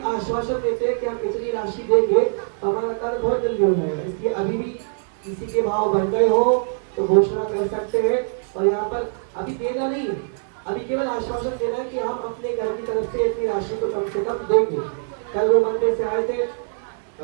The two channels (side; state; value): left; silent; 64 dB below the other